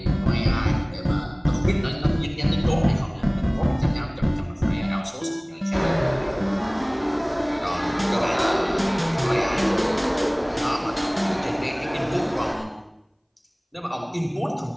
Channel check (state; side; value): identical; both; correlation 1.00